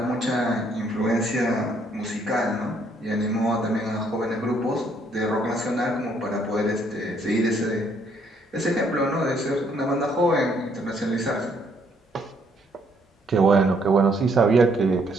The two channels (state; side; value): normal; both; correlation 0.68